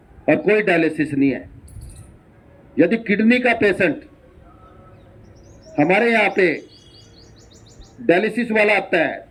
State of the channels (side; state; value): both; identical; correlation 1.00